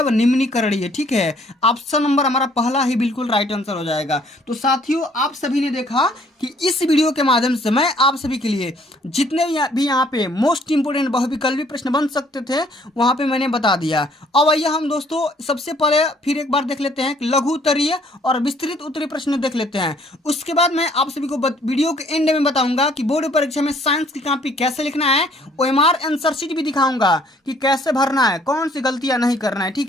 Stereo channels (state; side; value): normal; both; correlation 0.61